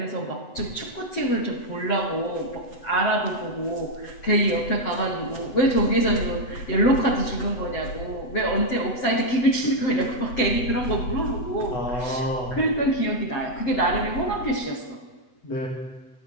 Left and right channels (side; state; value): right; late; 8.0 ms